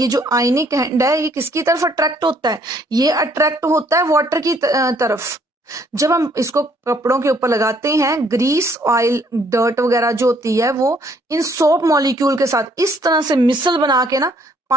जो आयनिक एंड है ये किसकी तरफ अट्रैक्ट होता है, ये अट्रैक्ट होता है वाटर की तरफ। जब हम इसको कपड़ों के ऊपर लगाते हैं, ग्रीस ऑयल डर्ट वगैरह जो होती है वो इन सोप मॉलिक्यूल के साथ इस तरह से मिसल बना के ना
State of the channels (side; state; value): both; normal; correlation 0.65